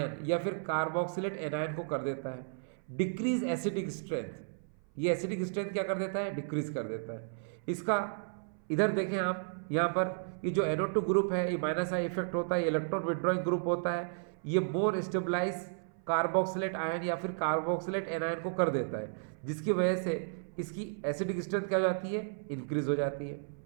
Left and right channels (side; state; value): left; silent; 55 dB below the other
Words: या फिर कार्बोक्सिलेट एनायन को कर देता है। डिक्रीज एसिडिक स्ट्रेंथ, ये एसिडिक स्ट्रेंथ क्या कर देता है, डिक्रीज कर देता है। इसका इधर देखें आप, यहाँ पर ये जो NO2 ग्रुप है ये माइनस आई इफेक्ट होता है, इलेक्ट्रॉन विड्रॉइंग ग्रुप होता है। ये मोर स्टेबलाइज कार्बोक्सिलेट आयन या फिर कार्बोक्सिलेट एनायन को कर देता है, जिसकी वजह से इसकी एसिडिक स्ट्रेंथ क्या हो जाती है, इंक्रीज हो जाती है।